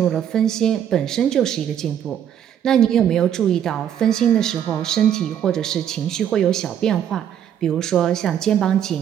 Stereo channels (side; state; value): left; quieter; 9.6 dB